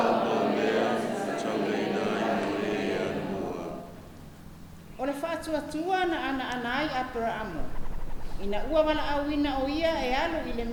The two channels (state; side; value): identical; both; correlation 1.00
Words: O le wha atua na ana ai Abrahamo. Ina ua wala awina o ia e alu I le